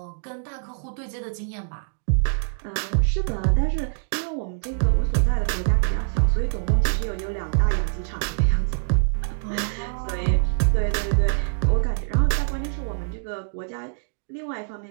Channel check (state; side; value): silent; left; digital silence